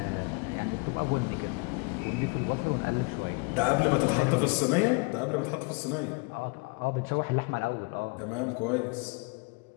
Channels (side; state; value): right; quieter; 31.0 dB